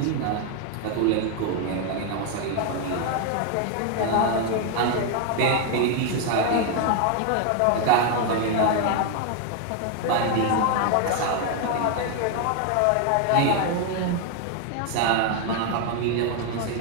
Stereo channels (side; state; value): both; different; correlation 0.01